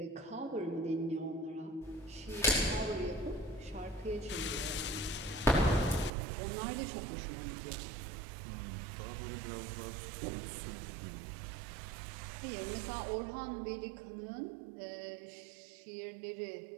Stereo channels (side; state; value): left; drops out; at 6.1 s